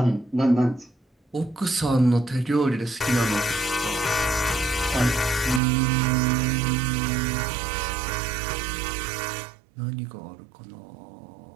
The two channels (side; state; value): left; drops out; at 5.6 s